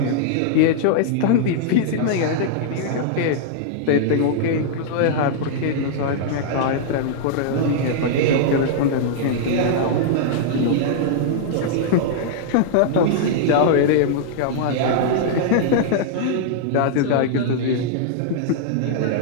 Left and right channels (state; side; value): different; both; correlation -0.01